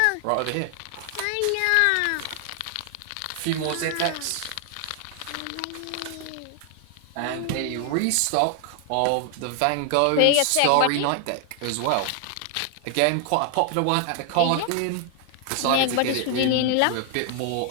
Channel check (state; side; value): different; both; correlation 0.00